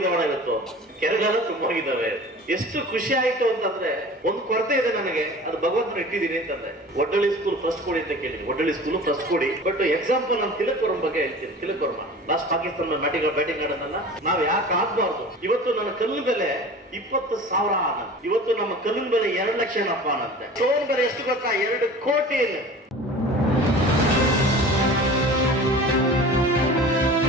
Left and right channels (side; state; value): both; normal; correlation 0.39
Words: ಇವತ್ತು, ಕೆರೆಗಳೆಲ್ಲ ತುಂಬೋಗಿದ್ದಾವೆ. ಎಷ್ಟು ಖುಷಿ ಆಯ್ತು ಅಂತಂದ್ರೆ, ಒಂದು ಕೊರತೆ ಇದೆ ನನಗೆ, ಅದು ಭಗವಂತನ ಇಟ್ಟಿದ್ದೀನಿ ಅಂತಂದ್ರೆ. ಒಡ್ಡಳ್ಳಿ ಸ್ಕೂಲ್ ಫಸ್ಟ್ ಕೊಡಿ ಅಂತ ಕೇಳಿದೀನಿ, ಒಡ್ಡಳ್ಳಿ ಸ್ಕೂಲ್ ಫಸ್ಟ್ ಕೊಡಿ. ಬಟ್ ಎಕ್ಸಾಂಪಲ್ ನಾನು ತಿಲಕ್ ವರ್ಮ ಬಗ್ಗೆ ಹೇಳ್ತೀನಿ. ತಿಲಕ್ ವರ್ಮ ಲಾಸ್ಟ್ ಪಾಕಿಸ್ತಾನ ಬ್ಯಾಟಿಂಗ್ ಆಡೋದನ್ನ ನಾವ್ ಯಾಕೆ ಆಗ್ಬಾರ್ದು? ಇವತ್ತು ನನ್ನ ಕಲ್ಲಿನ ಬೆಲೆ 20,000 ಅನ್ನಂತೆ, ಇವತ್ತು ನಮ್ಮ ಕಲ್ಲಿನ ಬೆಲೆ 2 ಲಕ್ಷ ಏನಪ್ಪ ಅನ್ನಂತೆ. ಸ್ಟೋನ್ ಬೆಲೆ ಎಷ್ಟು ಗೊತ್ತಾ? 2 ಕೋಟಿ.